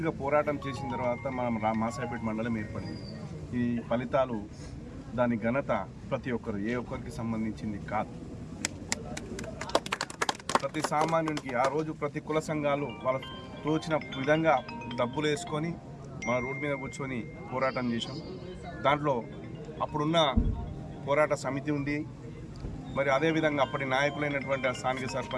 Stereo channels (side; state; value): both; identical; correlation 1.00